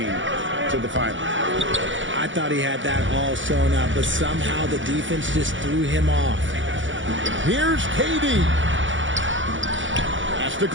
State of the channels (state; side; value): late; left; 0.56 ms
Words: to the final. I thought he had that all sewn up, but somehow the defense just threw him off. Here's KD. Pass to